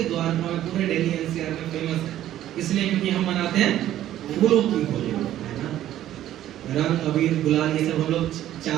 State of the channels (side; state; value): left; quieter; 12.6 dB